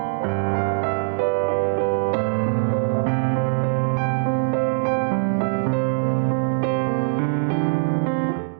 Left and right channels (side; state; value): left; silent; digital silence